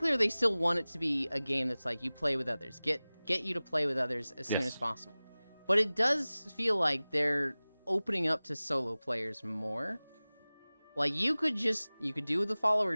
they still want it to be a game that's you play with others. Get you to play with others as soon as possible. But it does feel like they're opening up to solo players more. You could do the follower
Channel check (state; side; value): inverted; both; correlation -0.98